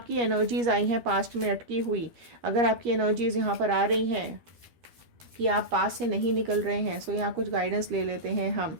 एनर्जीज आई हैं पास्ट में अटकी हुई। अगर आपकी एनर्जीज यहाँ पर आ रही हैं कि आप पास से नहीं निकल रहे हैं, सो यहाँ कुछ गाइडेंस ले लेते हैं हम।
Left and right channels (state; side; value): late; left; 13 ms